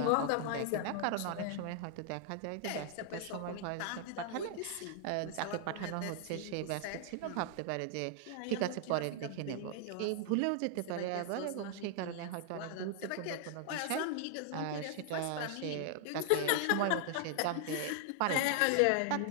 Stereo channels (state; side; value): different; both; correlation 0.00